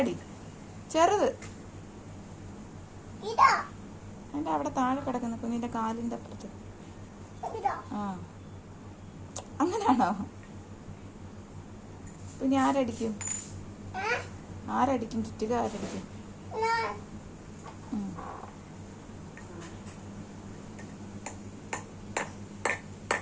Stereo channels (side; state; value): both; identical; correlation 1.00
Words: ചെറുത് അതിന്റെ അവിടെ താഴെ കിടക്കുന്ന കുഞ്ഞിന്റെ കാലിന്റെ അപ്പുറത്ത്. ആ അങ്ങനാണോ? പിന്നെ ആരടിക്കും? ആരടിക്കും? ചുറ്റിക ആരടിക്കും?